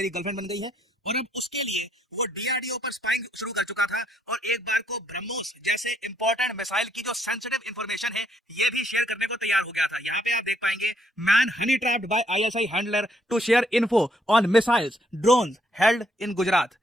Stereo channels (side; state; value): both; normal; correlation 0.71